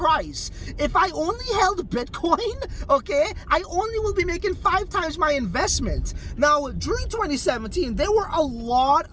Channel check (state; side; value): identical; both; correlation 1.00